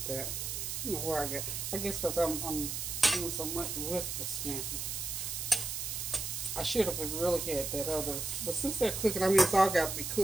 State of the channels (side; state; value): right; noise; hiss, 4 dB below the sound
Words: that. I don't know where I guess because I'm doing so much with the scampi. I should have really had that other, but since they're cooking, I mean, it's all got to be